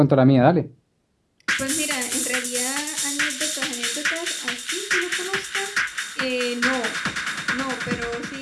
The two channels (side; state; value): both; identical; correlation 1.00